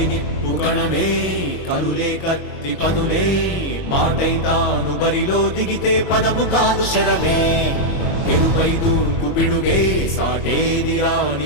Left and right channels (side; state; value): right; late; 22 ms